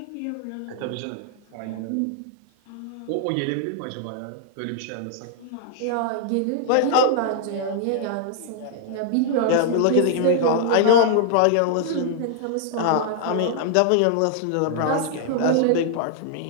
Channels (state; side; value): different; both; correlation -0.01